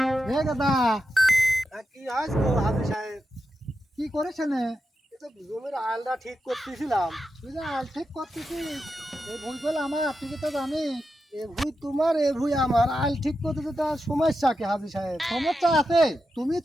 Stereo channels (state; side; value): normal; both; correlation 0.88